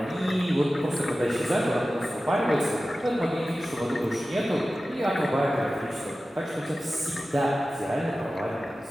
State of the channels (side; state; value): both; normal; correlation 0.95